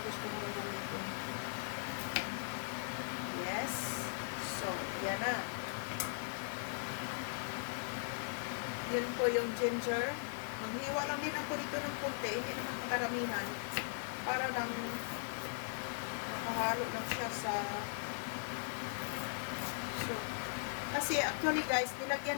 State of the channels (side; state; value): right; silent; digital silence